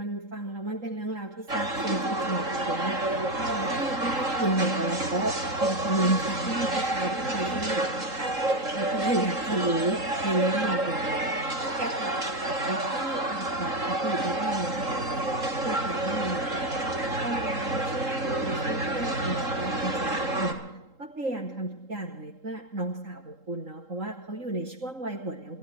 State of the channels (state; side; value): late; left; 3.8 ms